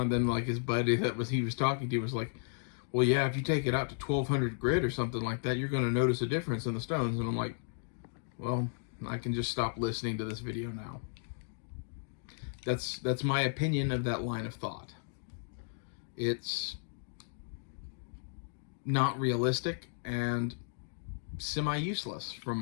like his buddy he was talking to was like, well, yeah, if you take it out to 1200 grit or something like that, you're going to notice a difference in the stones. And I'm like, well, I can just stop listening to this video now. That's my opinion of that line of thought. It's not realistic and semi-useless from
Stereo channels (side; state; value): right; silent; digital silence